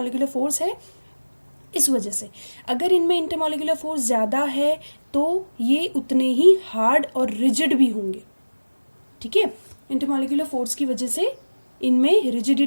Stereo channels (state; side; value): inverted; both; correlation -1.00